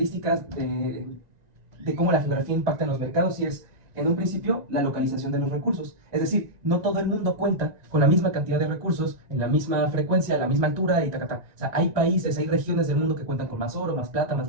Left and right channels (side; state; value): left; late; 1.9 ms